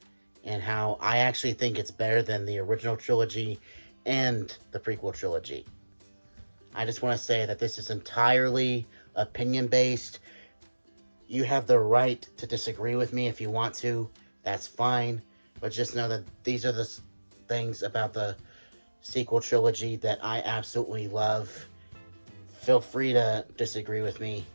and how I actually think it's better than the original trilogy and the prequel trilogy. I just want to say that this is entirely opinion-based. You have the right to disagree with me if you want to. That's fine. But just know that these are the things about the sequel trilogy that I absolutely love. Feel free to disagree with me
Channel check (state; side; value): inverted; both; correlation -1.00